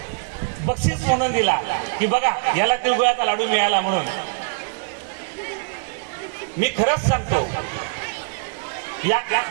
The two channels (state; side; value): quieter; left; 37.6 dB